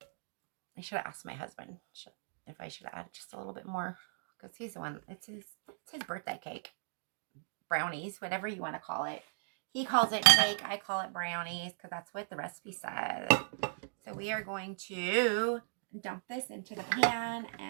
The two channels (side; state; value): left; silent; digital silence